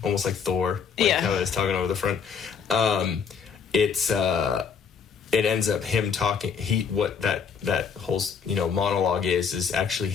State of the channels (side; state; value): right; quieter; 6.5 dB